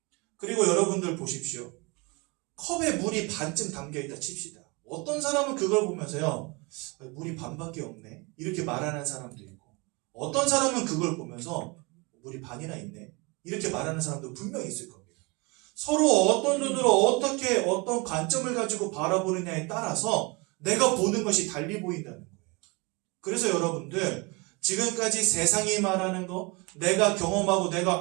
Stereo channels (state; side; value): quieter; left; 27.9 dB